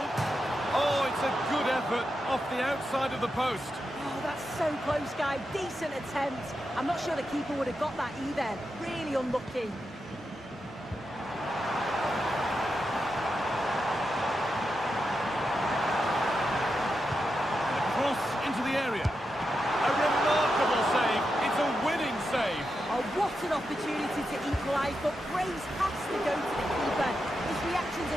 Oh, it's a good effort off the outside of the post. Oh, that's so close, guy. Decent attempt. I'm not sure the keeper would have got that either. Really unlucky. And a cross into the area. A remarkable save. It's a winning save. Oh, what an opportunity to equalise, but praise has to go to the keeper. His reactions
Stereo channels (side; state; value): both; normal; correlation 0.87